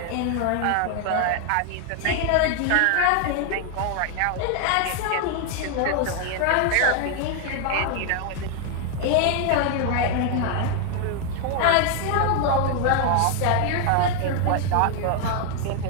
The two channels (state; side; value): different; both; correlation 0.00